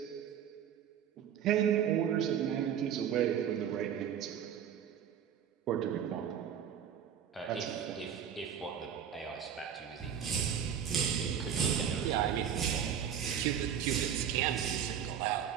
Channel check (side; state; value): left; quieter; 8.7 dB